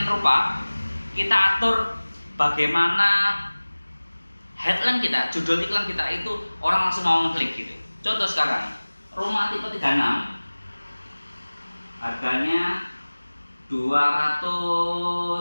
rupa, kita atur bagaimana headline kita, judul iklan kita itu orang langsung mau ngeklik gitu. Contoh sekarang, rumah tipe 36 harganya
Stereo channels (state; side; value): inverted; both; correlation -1.00